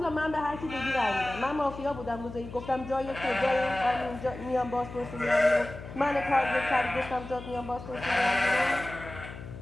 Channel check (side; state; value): left; noise; hum, 13 dB below the sound